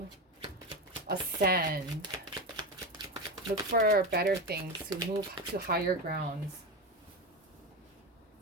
ascend. Look for better things, to move to higher grounds.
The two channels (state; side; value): normal; both; correlation 0.18